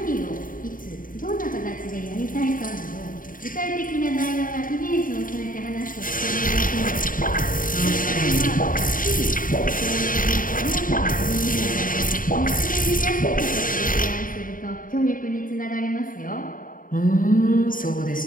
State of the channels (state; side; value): late; right; 0.40 ms